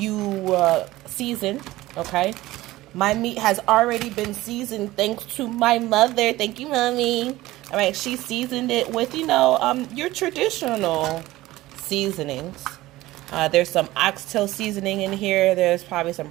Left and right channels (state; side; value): quieter; left; 17.4 dB